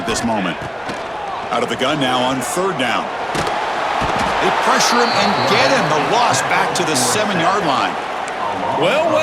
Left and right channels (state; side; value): identical; both; correlation 1.00